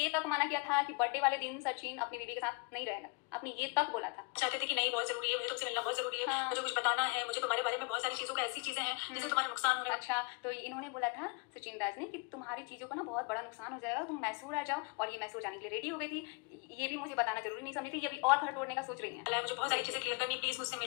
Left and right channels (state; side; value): quieter; right; 31.0 dB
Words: तक माना किया था कि बर्थडे वाले दिन सचिन अपनी बीवी के साथ नहीं रहेगा, आपने ये तक बोला था। चाहते थे कि नहीं बहुत जरूरी है, मुझे तुमसे मिलना बहुत जरूरी है, हाँ। मुझे कुछ बताना है, मुझे तुम्हारे बारे में बहुत सारी चीजों का ऐसी चीजें हैं जिससे तुम्हारा नुकसान हो रहा है। अच्छा, तो इन्होंने बोला था सचिन राज ने कि तुम्हारी चीज़ों का ना बहुत बड़ा नुकसान हो जाएगा, तुम मैसूर आ जाओ, और ये मैसूर जाने के लिए रेडी हो गई थी। ये भी मुझे बताना जरूरी नहीं समझी थी, ये भी और घर तोड़ने का सोच रही है। मुझे बहुत सारी चीजें क्लियर करनी, प्लीज मुझसे